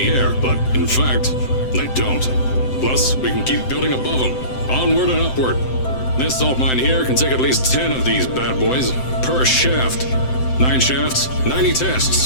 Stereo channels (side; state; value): right; late; 7.8 ms